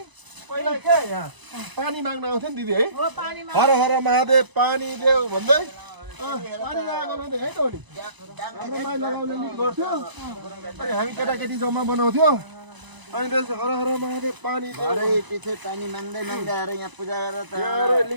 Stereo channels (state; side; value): late; left; 1.0 ms